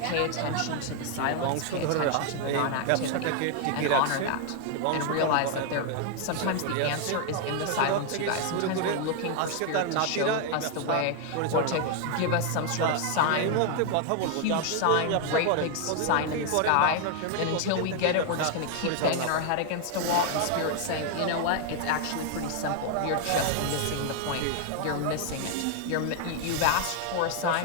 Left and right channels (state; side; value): different; both; correlation 0.00